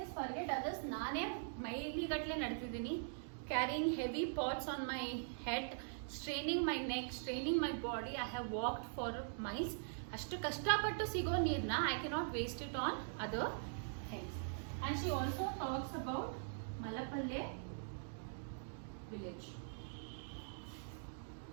forget others, ನಾನೇ ಮೈಲಿಗಟ್ಟಲೆ ನಡೆತಿದ್ದೀನಿ, carrying heavy pots on my head, straining my neck, straining my body. I have walked for miles. ಅಷ್ಟು ಕಷ್ಟಪಟ್ಟು ಸಿಗೋ ನೀರನ್ನ I cannot waste it on other things. And she also talks about Malapalle village.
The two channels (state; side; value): silent; left; digital silence